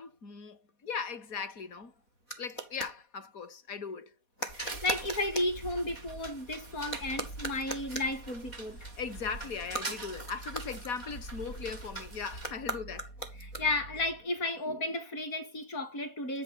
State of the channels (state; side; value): late; right; 4.2 ms